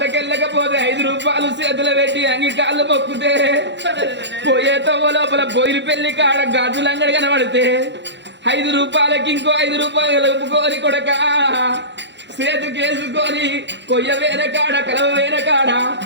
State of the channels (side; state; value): left; late; 0.52 ms